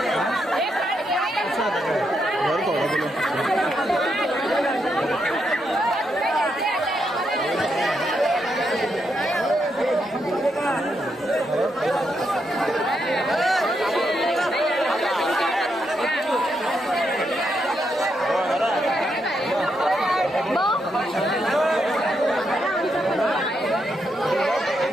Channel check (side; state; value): both; normal; correlation 0.81